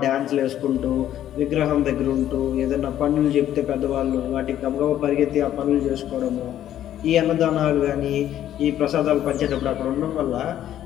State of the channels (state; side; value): quieter; right; 11.6 dB